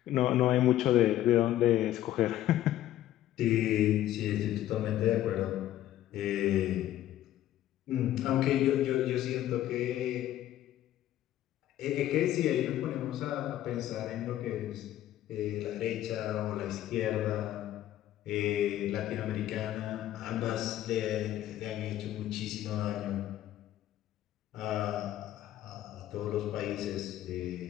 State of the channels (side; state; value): right; quieter; 13.1 dB